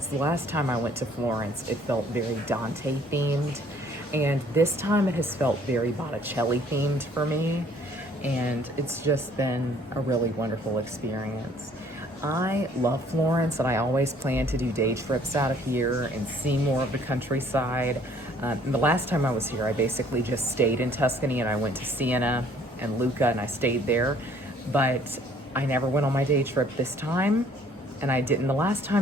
The last time I went to Florence, it felt very Dante themed, and this time it has felt very Botticelli themed for me, and it's just been a really wonderful experience. I love Florence, and I always plan to do day trips out of here and see more of the countryside. The last time I was here, I basically just stayed in Tuscany, and I went to Siena and Lucca, and I stayed there. But I never went on my day trip this time, and I didn't the last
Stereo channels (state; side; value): normal; both; correlation 0.59